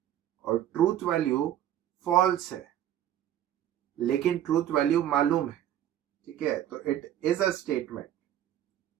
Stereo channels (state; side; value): quieter; left; 11.4 dB